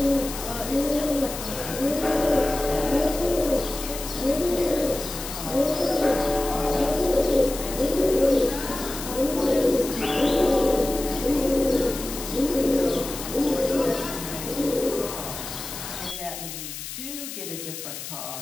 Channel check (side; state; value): left; noise; hiss, 9 dB below the sound